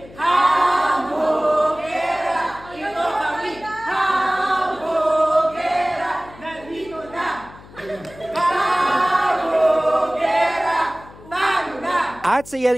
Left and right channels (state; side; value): noise; left; hum, 20 dB below the sound